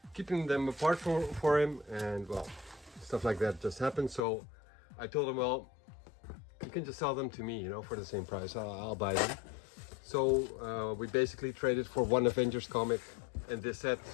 apart for him, and well, stuff like that just happened. So I told him, well, you can just sell them to me, you know, for the same price. I'll buy them. So we basically traded for one Avengers comic and this set.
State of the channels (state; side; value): drops out; right; at 4.2 s